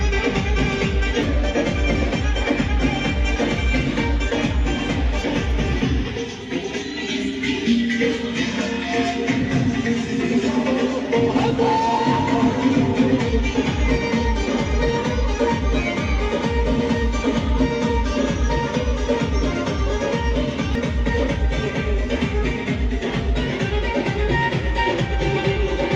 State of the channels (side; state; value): both; identical; correlation 1.00